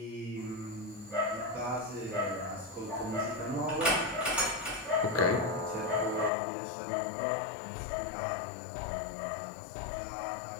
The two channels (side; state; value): right; drops out; at 6.3 s